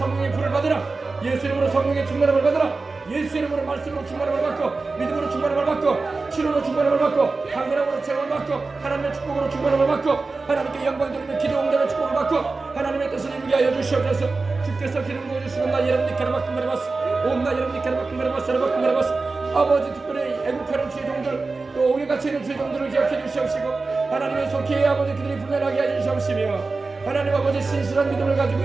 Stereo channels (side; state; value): left; quieter; 3.9 dB